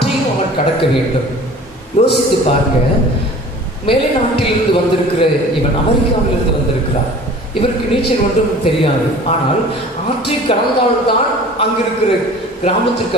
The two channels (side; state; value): both; normal; correlation 0.44